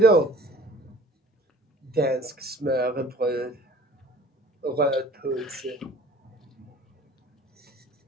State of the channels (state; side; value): normal; both; correlation 0.49